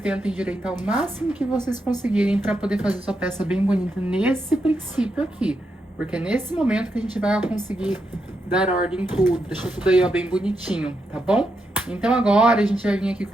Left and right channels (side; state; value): both; normal; correlation 0.83